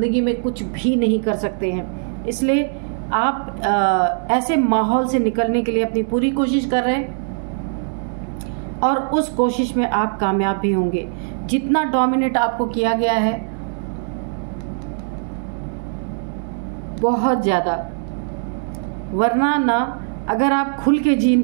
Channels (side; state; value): left; silent; 65 dB below the other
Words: में कुछ भी नहीं कर सकते हैं। इसलिए आप ऐसे माहौल से निकलने के लिए अपनी पूरी कोशिश कर रहे हैं और उस कोशिश में आप कामयाब भी होंगे। जितना डोमिनेट आपको किया गया है बहुत ज़्यादा, वरना ना अगर आप खुल के